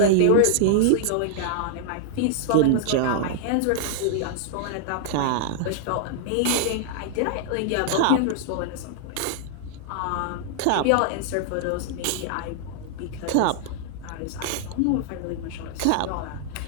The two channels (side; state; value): both; different; correlation -0.01